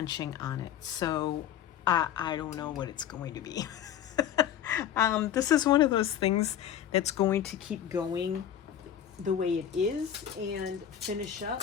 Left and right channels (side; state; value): right; quieter; 10.1 dB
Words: on it, so I don't know what it's going to be. This is one of those things that's going to keep going the way it is and finish